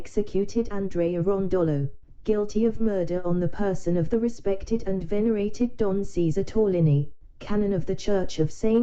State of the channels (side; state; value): both; identical; correlation 1.00